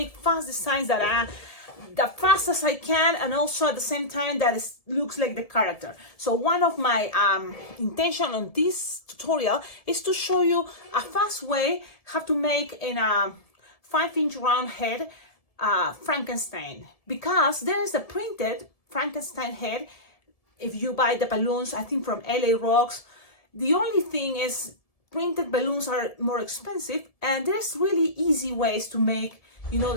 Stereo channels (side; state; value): right; late; 1.7 ms